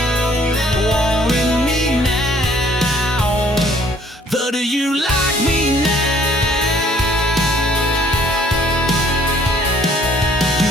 Wanting me now, but do you like me now? You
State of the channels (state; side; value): normal; both; correlation 0.59